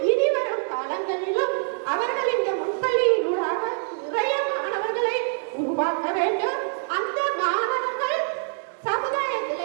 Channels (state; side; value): silent; left; digital silence